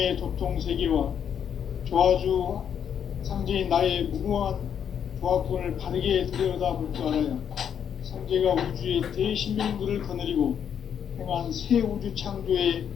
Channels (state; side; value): quieter; right; 8.4 dB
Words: 도통 세계와 조화주 상제인 나의 무궁한 조화권을 바르게 들여다볼 줄 알아야 상제가 우주의 대신명들을 거느리고 행한 새 우주 창조의